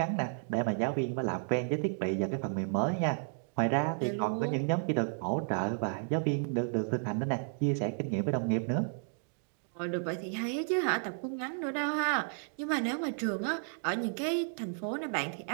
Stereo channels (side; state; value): left; silent; 56 dB below the other